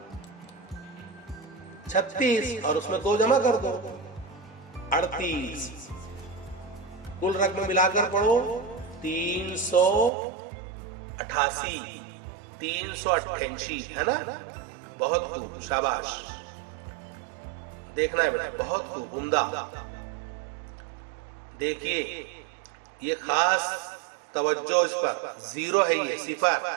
36 और उसमें 2 जमा कर दो 38। कुल रकम मिलाकर पढ़ो 388, 388 है ना। बहुत खूब, शाबाश। देखना है बेटा, बहुत खूब, उम्दा। देखिए ये खास तवज्जो इस पर, 0 है ये,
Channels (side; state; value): left; drops out; at 10.1 s